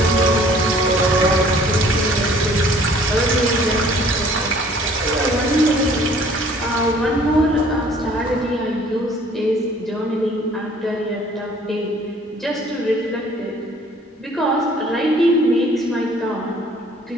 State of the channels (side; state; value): both; normal; correlation 0.55